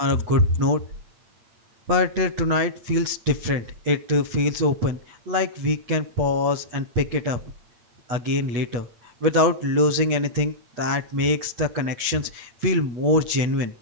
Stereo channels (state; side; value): late; left; 8.2 ms